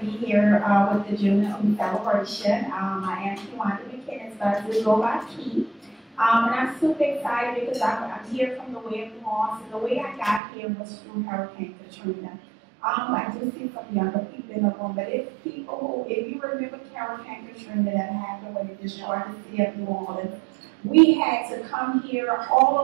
be here with the JuneTeenth celebration. I am Kewenda McKinnis, but I do go by Key. And I'm super excited because I'm here from the way of New Orleans, and the way I got here was through Hurricane Katrina. I do see some younger people in the room, but if you remember Hurricane Katrina that happened when it destroyed the city of New Orleans, we had to come here, all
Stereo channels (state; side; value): drops out; left; at 10.4 s